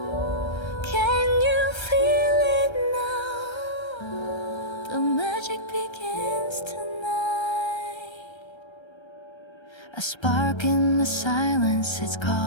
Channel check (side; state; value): right; late; 1.3 ms